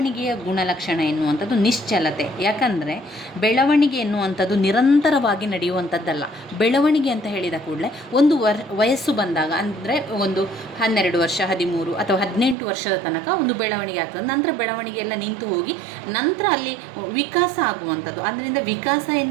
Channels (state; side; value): drops out; left; at 12.6 s